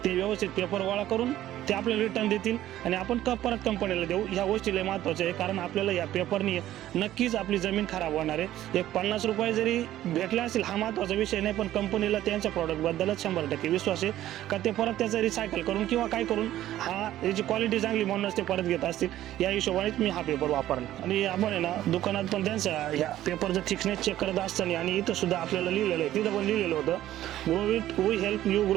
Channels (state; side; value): quieter; left; 13.4 dB